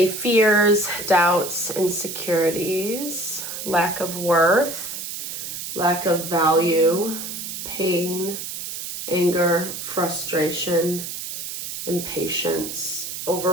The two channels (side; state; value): right; noise; hiss, 7 dB below the sound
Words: fears, doubts, insecurities, lack of worth, lack of value, pain, anger, frustration, impatience,